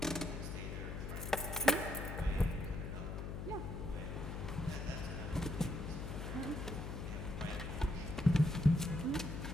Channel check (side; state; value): left; noise; hum, 5 dB below the sound